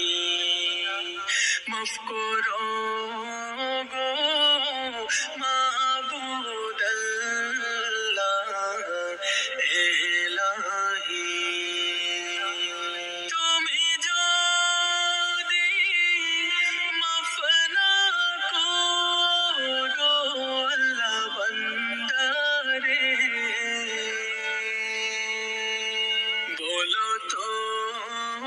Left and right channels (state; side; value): identical; both; correlation 1.00